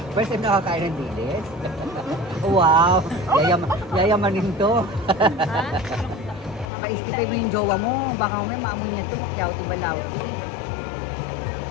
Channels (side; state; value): right; drops out; at 6.7 s